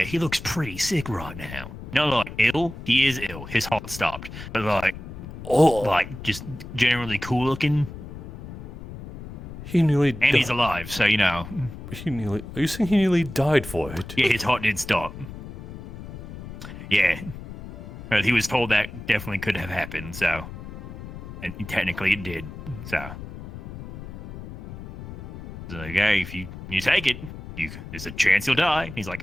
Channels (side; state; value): left; noise; rumble, 12 dB below the sound